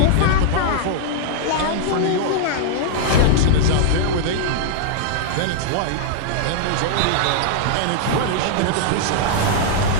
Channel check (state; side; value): different; both; correlation -0.01